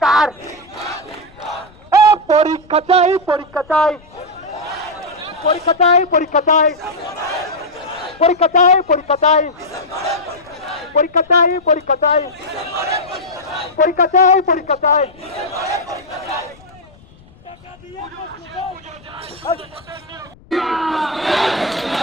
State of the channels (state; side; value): noise; left; rumble, 26 dB below the sound